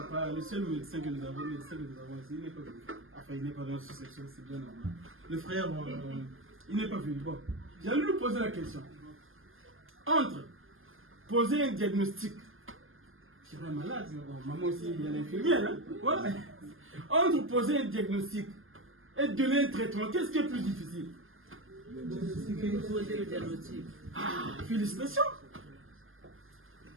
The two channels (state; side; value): late; left; 0.59 ms